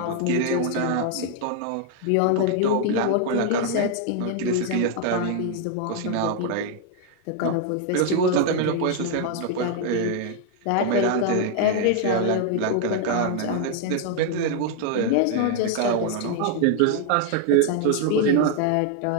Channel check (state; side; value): different; both; correlation 0.00